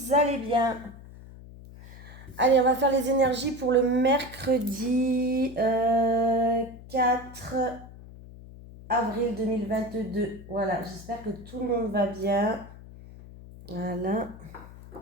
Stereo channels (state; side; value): noise; left; hum, 17 dB below the sound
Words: allez bien. Allez, on va faire les énergies pour le mercredi 4 avril 2022. Voilà, j'espère que tout le monde va bien. Voilà.